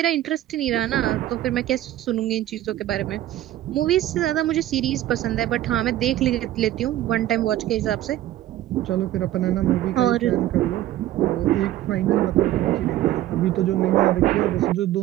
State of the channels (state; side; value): quieter; left; 13.7 dB